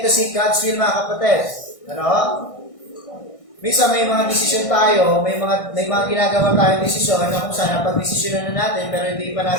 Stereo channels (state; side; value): late; right; 1.6 ms